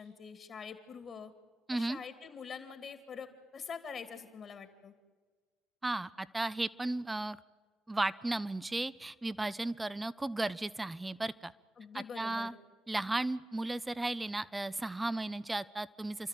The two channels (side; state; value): both; normal; correlation 0.97